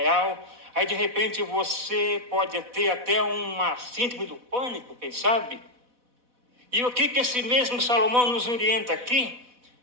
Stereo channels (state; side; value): late; left; 4.1 ms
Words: Aí, de repente, você pode ter até uma síndrome do pânico, quem sabe? E o que esse mesmo Salomão nos orienta aqui?